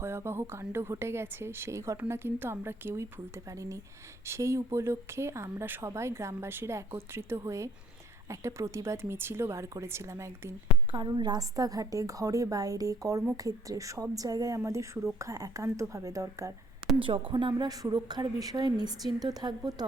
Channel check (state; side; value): normal; both; correlation 0.59